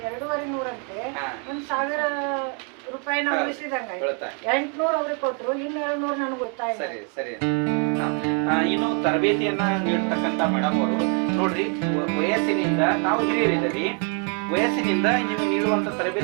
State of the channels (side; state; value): left; quieter; 38.2 dB